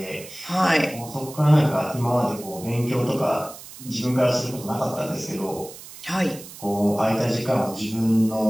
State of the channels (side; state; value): right; noise; hiss, 16 dB below the sound